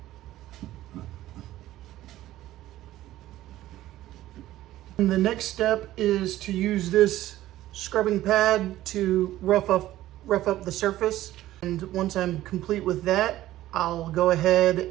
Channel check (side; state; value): left; quieter; 14.7 dB